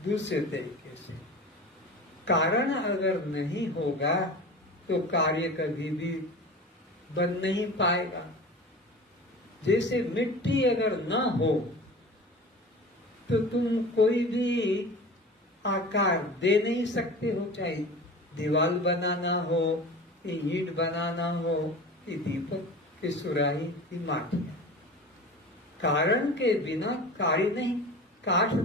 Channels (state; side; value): normal; both; correlation 0.35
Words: दूसरे तरीके से, कारण अगर नहीं होगा तो कार्य कभी भी बन नहीं पाएगा। जैसे मिट्टी अगर ना हो तो तुम कोई भी आकार दे नहीं सकते हो, चाहे दीवार बनाना हो, ईंट बनाना हो, दीपक की सुराही की माटिया। कारण के बिना कार्य नहीं। काठ